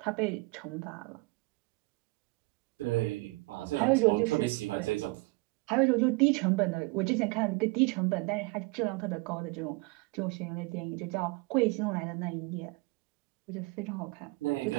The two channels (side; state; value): left; quieter; 25.4 dB